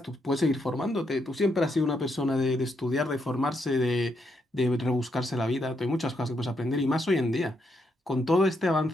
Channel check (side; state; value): both; normal; correlation 0.78